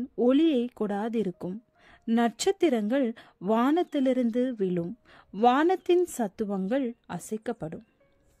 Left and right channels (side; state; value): both; identical; correlation 1.00